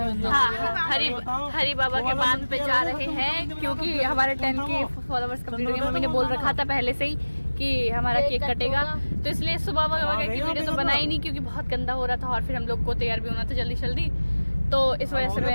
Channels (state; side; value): inverted; both; correlation -1.00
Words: हाँ, हरी बाबा के बांध पे जा रहे हैं क्योंकि हमारे 10 के फॉलोवर्स कंप्लीट हो गए। मम्मी ने बोल रखा था पहले से ही कि हमारा केक कटेगा, तो इसलिए सुबह वगैरह की वीडियो तो बनाई नहीं क्योंकि बहुत गंदा हो रहा था और फिर हम लोग को तैयार भी होना था जल्दी जल्दी, तो इस वजह से